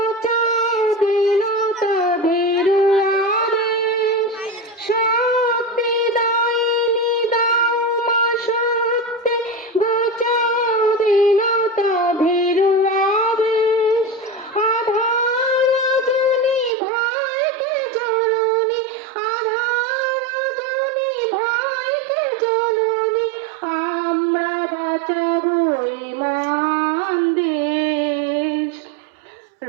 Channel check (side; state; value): left; drops out; at 16.7 s